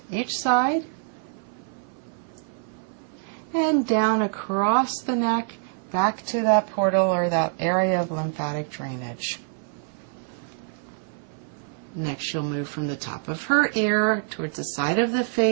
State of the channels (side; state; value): left; silent; 56 dB below the other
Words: each side, and down across the neck back to that portal or that area of lymphatic drainage. Next, she'll move from the top of her ear towards the side of the